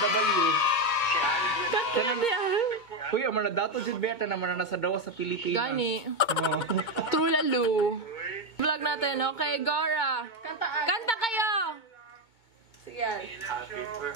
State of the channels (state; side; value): late; right; 2.1 ms